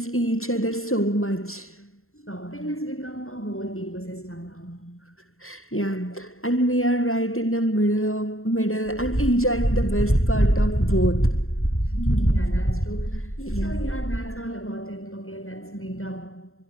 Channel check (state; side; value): late; right; 0.62 ms